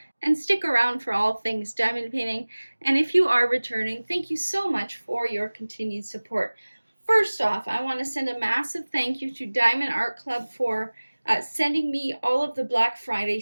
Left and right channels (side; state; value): both; inverted; correlation -1.00